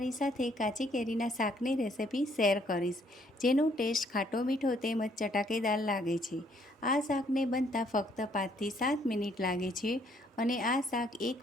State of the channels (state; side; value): normal; both; correlation 0.66